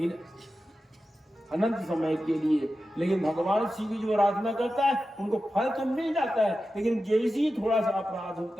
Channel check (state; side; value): normal; both; correlation 0.92